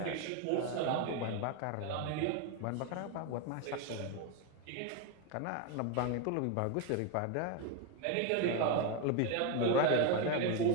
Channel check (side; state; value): both; different; correlation 0.02